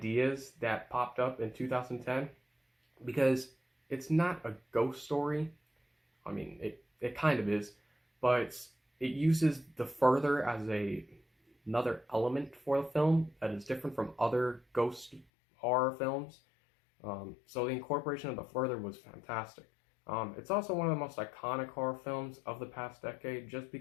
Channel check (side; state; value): right; drops out; at 15.2 s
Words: that popped up in 2010, because it's not a ghost story. I mean, it kind of is, but it uses the further as another element for the film that is different from other ghost horror films. So the incorporation of the further was fantastic. It's also one of the most iconic horror films of the past decade just